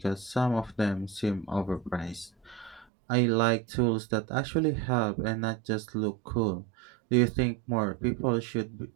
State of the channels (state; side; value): drops out; left; at 2.9 s